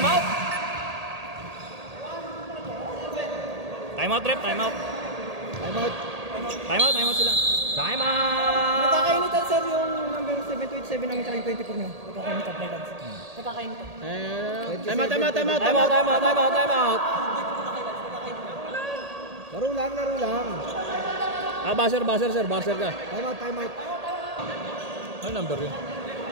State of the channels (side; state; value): left; late; 1.8 ms